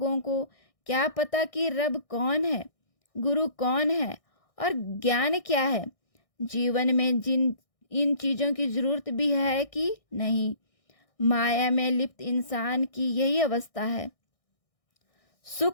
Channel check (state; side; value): late; right; 1.6 ms